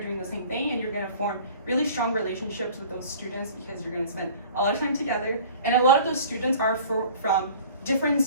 doing the same thing, and you're gonna form really strong relationships with those students because you're gonna spend a lot of time together. And a lot of those students are from different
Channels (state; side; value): inverted; both; correlation -0.46